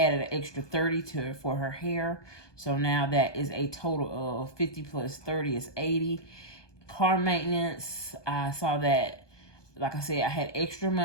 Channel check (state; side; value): late; right; 1.2 ms